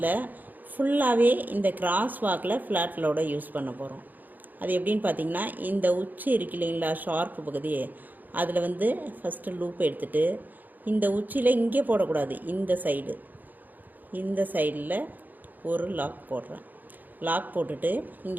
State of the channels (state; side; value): late; left; 0.085 ms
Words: ஃபுல்லாகவே இந்த கிராஸ் வாக்கில் ஃப்ளாட் லோடை யூஸ் பண்ண போகிறோம். அது எப்படின்னு பார்த்தீங்கன்னா, இந்த உச்சி இருக்கு இல்லைங்களா, ஷார்ப்பு பகுதி, அதில் வந்து ஃபஸ்ட்டு லூப் எடுத்துகிட்டு இந்த உச்சியில் இங்கே போடக்கூடாது, இந்த சைடில் ஒரு லாக் போடுறேன். லாக் போட்டுட்டு